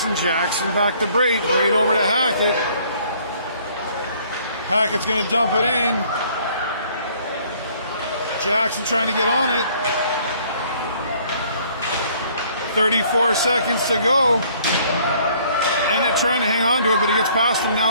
Jackson back to Braid, Braid over to Hackett. Hackett's going to dump it in. Jackson trying to get on it. 34 seconds to go. And it's trying to hang on to it, but he gets past him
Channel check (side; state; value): both; inverted; correlation -0.59